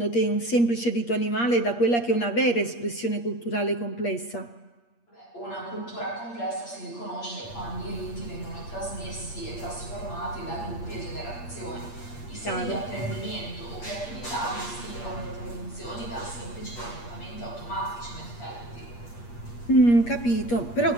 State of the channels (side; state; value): right; late; 8.5 ms